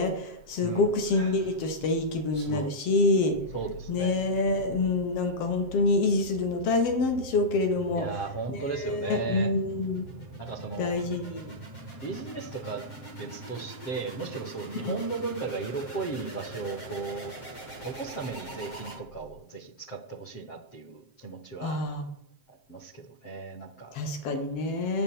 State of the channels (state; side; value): late; right; 7.6 ms